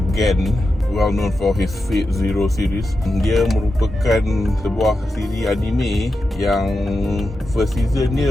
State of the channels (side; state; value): both; normal; correlation 0.89